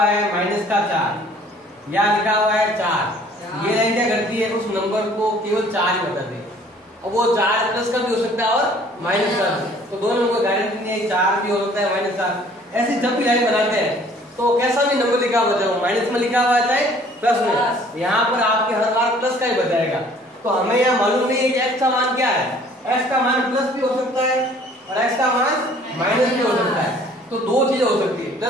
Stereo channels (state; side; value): normal; both; correlation 0.55